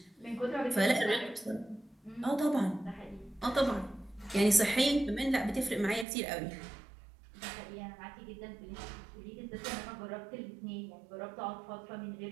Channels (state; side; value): drops out; left; at 6.1 s